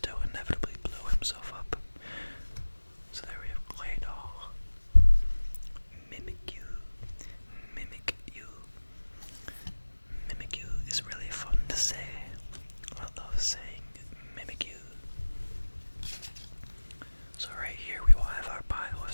inevitably blow himself up. So there we have Clay Doll. Mimikyu. Mimikyu. Mimikyu is really fun to say. I love saying Mimikyu. So right here we will have our pile of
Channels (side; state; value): both; inverted; correlation -1.00